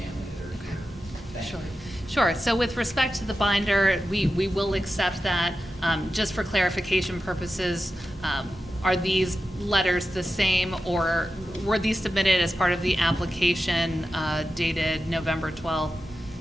that are here. Thank you. Sure. So with respect to the binder, we will accept that. Just for clarification purposes, are these letters the same, or were these submitted as part of the application dated November 12th,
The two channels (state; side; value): normal; both; correlation 0.91